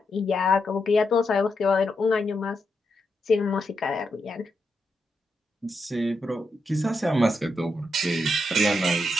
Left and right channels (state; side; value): normal; both; correlation 0.83